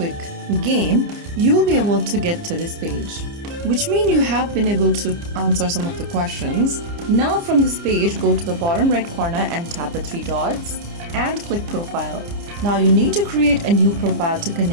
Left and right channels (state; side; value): late; left; 29 ms